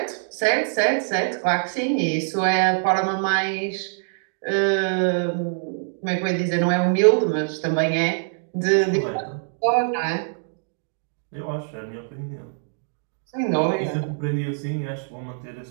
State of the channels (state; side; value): silent; left; digital silence